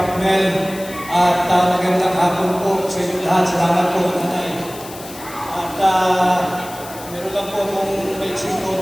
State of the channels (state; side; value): noise; left; hiss, 16 dB below the sound